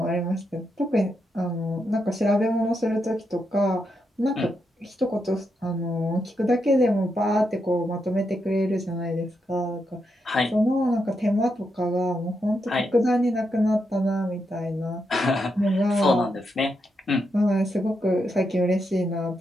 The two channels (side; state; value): both; normal; correlation 0.83